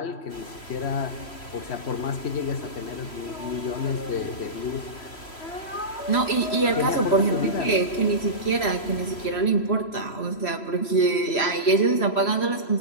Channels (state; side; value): late; right; 3.1 ms